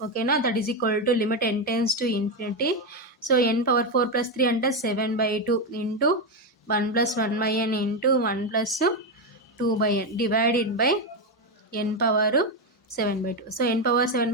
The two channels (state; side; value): normal; both; correlation 0.08